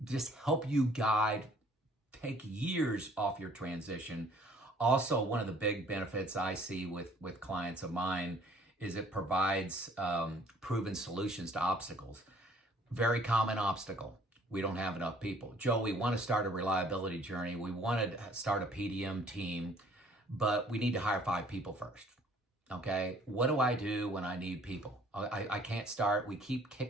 Just help you guide, take years off your transition Also, one of the big benefits I see with clients of mine is it provides proven solutions to obstacles. Very common obstacle. We don't have enough people. Joe, we want to start a reliability journey. We want to start a PDM team, but we need to hire 5 people first. Okay. What do I do when I need people? I can't start. We keep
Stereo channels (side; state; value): both; normal; correlation 0.58